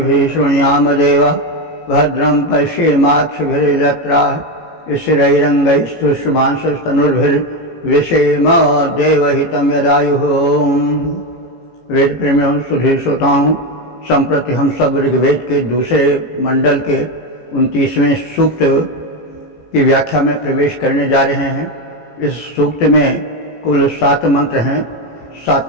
शृणुयाम देवा भद्रं पश्येमाक्षभिर्यजत्राः स्थिरैरङ्गैस्तुष्टुवांसस्तनुर्भिर्विषेम देवहितं यदायुः। वेद प्रेमियों सुधी श्रोताओं, संप्रति हम सब ऋग्वेद के दूसरे मंडल के 29वें सूक्त की व्याख्या में प्रवेश करने जा रहे हैं। इस सूक्त में कुल 7 मंत्र हैं।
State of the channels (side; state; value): right; late; 18 ms